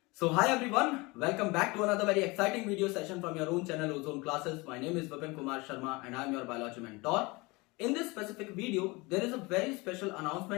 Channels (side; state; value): right; quieter; 24.7 dB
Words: So hi everyone, welcome back to another very exciting video session from your own channel Ozone Classes. My name is Vipin Kumar Sharma and I am your biology mentor. In this specific video, there is a very special